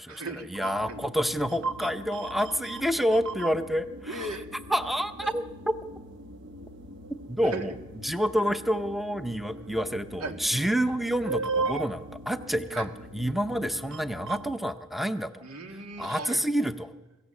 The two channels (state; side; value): normal; both; correlation 0.80